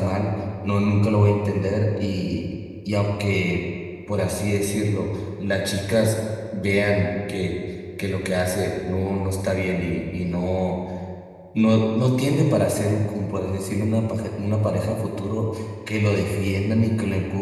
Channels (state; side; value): identical; both; correlation 1.00